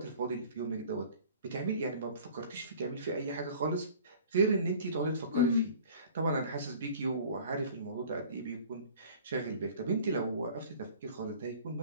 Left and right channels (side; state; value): both; inverted; correlation -0.47